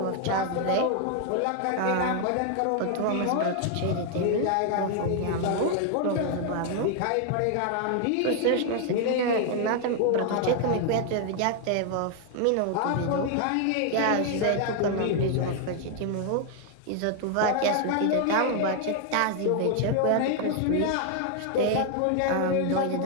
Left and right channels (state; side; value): different; both; correlation 0.00